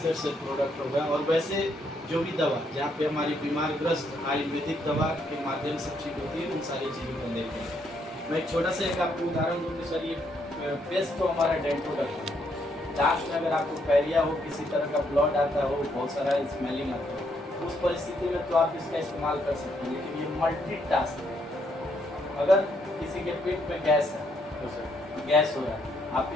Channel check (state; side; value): normal; both; correlation 0.73